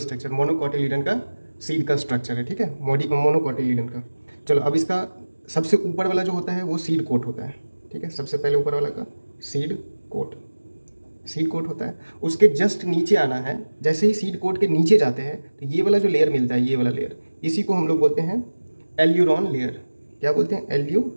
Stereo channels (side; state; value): both; inverted; correlation -1.00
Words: मोनोकोटिलीडन का सीड का स्ट्रक्चर है। ठीक है, मोनोकोटिलीडन का। चलो, अब इसका सबसे ऊपर वाला जो होता है वो सीड कोट होता है। ठीक है, सबसे पहले ऊपर वाला का सीड कोट, सीड कोट होता है। उसके जस्ट नीचे आना है। जैसे ही सीड कोट के नीचे जाते हैं तो ये वाला जो लेयर मिलता है, ये वाला लेयर, इसी को हम लोग बोलते हैं एल्यूरॉन लेयर। क्या बोलते हैं?